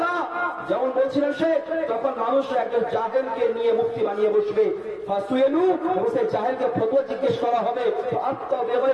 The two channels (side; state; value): both; identical; correlation 1.00